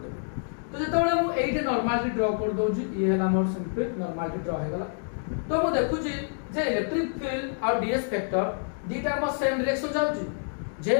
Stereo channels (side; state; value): right; silent; digital silence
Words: देबो तो जेतबेले मु एइटे नॉर्मली ड्रा कर दोजी ई हैला मोर सिंपल नॉर्मली ड्रा हे गला तो मु देखुची जे इलेक्ट्रिक फील्ड और डीएस वेक्टर दीटा म सेम डायरेक्शन जाउची